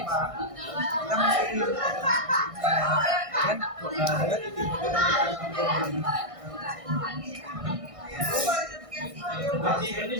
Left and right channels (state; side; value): late; left; 1.6 ms